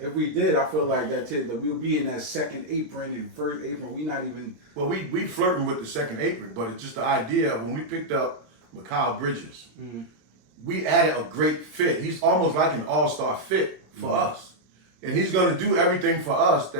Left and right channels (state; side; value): late; left; 26 ms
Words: we did, I feel like that we'll be in that second apron and first apron. We not even. Well, we flirting with the second apron, but it's just the idea of when we picked up Mikal Bridges, we added a great fit. He's almost like an all-star fit for us. And he's going to do everything for us